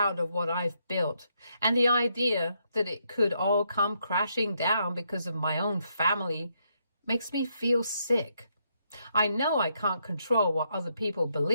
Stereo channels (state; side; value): inverted; both; correlation -0.76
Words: of what I've built, and the idea that it could all come crashing down because of my own family makes me feel sick. I know I can't control what other people